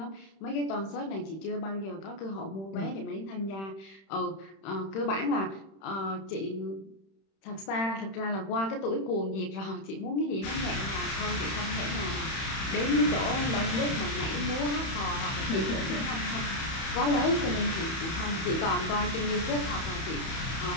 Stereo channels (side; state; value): right; late; 31 ms